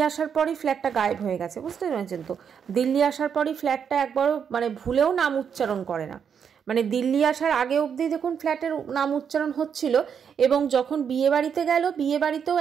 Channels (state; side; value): quieter; left; 7.4 dB